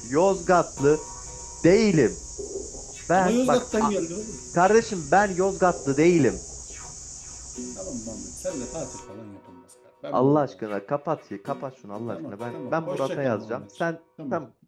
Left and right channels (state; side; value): identical; both; correlation 1.00